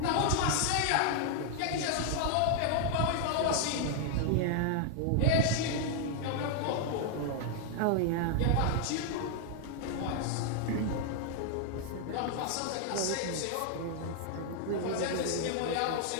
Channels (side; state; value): both; different; correlation 0.00